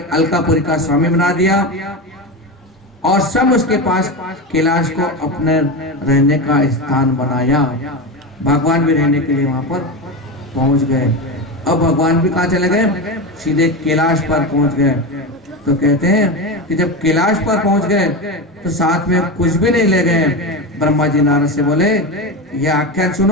अलकापुरी का स्वामी बना दिया और सब उसके पास कैलाश को अपने रहने का स्थान बनाया। भगवान भी रहने के लिए वहां पर पहुंच गए। अब भगवान भी कहाँ चले गए? सीधे कैलाश पर पहुंच गए। तो कहते हैं कि जब कैलाश पर पहुंच गए तो साथ में कुछ भी नहीं ले गए। ब्रह्मा जी नारद से बोले, यह आख्यान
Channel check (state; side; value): normal; both; correlation 0.19